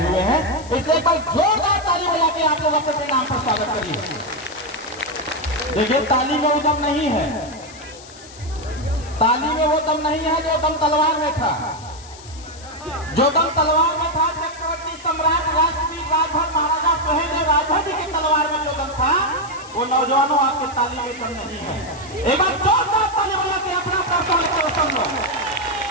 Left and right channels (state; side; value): noise; left; hiss, 19 dB below the sound